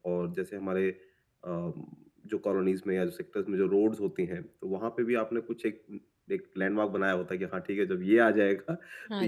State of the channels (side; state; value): both; identical; correlation 1.00